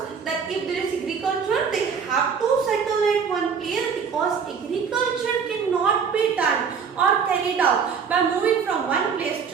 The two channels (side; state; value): left; quieter; 6.3 dB